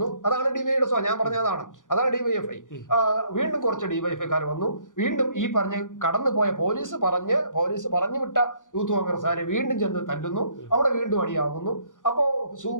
അതാണ് ഡിവൈയുടെ ഞാൻ പറഞ്ഞതാണ്. അതാണ് ഡിവൈഎഫ്ഐ. വീണ്ടും കുറച്ച് ഡിവൈഎഫ്ഐക്കാർ വന്നു. വീണ്ടും ഈ പറഞ്ഞ് കടന്നു പോയ പോലീസ് പറഞ്ഞു വിട്ട യൂത്ത് കോൺഗ്രസ്സുകാരെ വീണ്ടും ചെന്ന് തല്ലുന്നു. അവിടെ വീണ്ടും അടിയാകുന്നു. അപ്പോ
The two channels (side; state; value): right; late; 0.87 ms